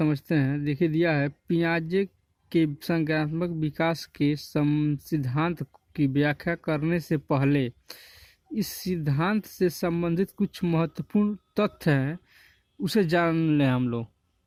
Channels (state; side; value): identical; both; correlation 1.00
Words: हैं। देखिए दिया है पियाजे के संज्ञानात्मक विकास के सिद्धांत की व्याख्या करने से पहले इस सिद्धांत से संबंधित कुछ महत्वपूर्ण तथ्य हैं, उसे जान लें हम लोग।